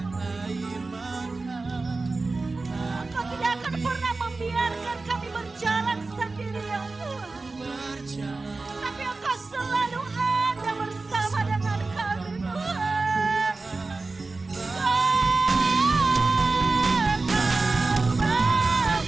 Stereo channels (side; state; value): left; quieter; 3.6 dB